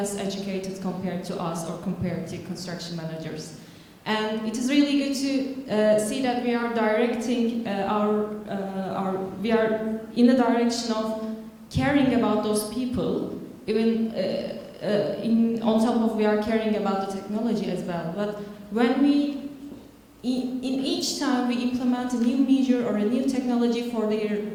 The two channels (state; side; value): identical; both; correlation 1.00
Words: educated compared to us or compared to construction managers. And it is really good to see that we are directing we are in the direction of caring about those people, even on top of we are caring about the technology as well. But when in each time we implement a new measure or a new technology for their